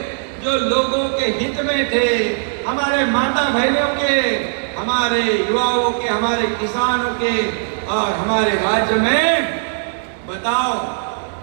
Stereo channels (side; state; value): left; silent; digital silence